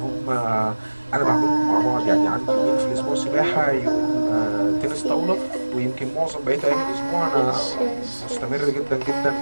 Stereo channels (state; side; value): inverted; both; correlation -1.00